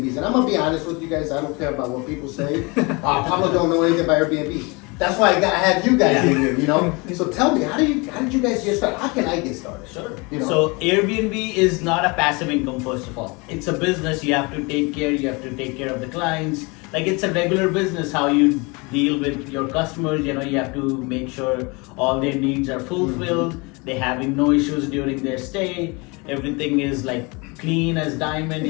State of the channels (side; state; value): right; quieter; 27.8 dB